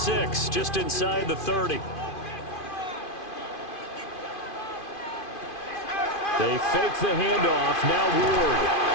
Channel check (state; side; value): late; right; 2.5 ms